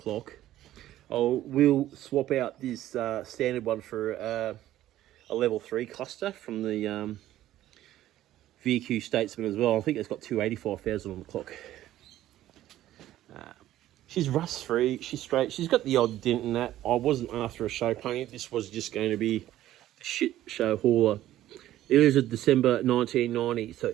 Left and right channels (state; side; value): quieter; left; 13.6 dB